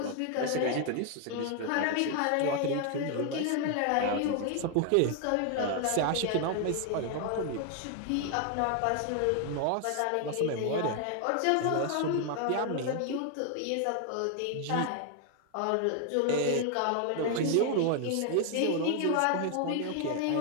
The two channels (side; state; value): both; different; correlation 0.00